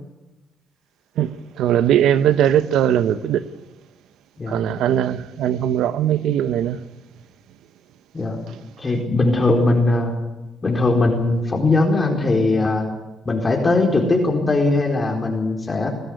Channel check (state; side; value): normal; both; correlation 0.67